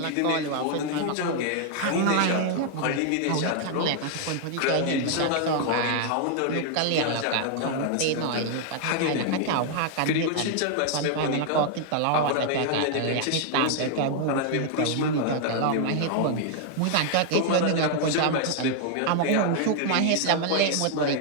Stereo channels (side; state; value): both; different; correlation 0.00